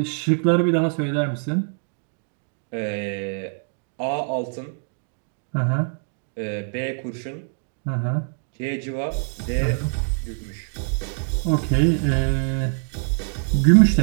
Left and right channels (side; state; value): left; silent; 63 dB below the other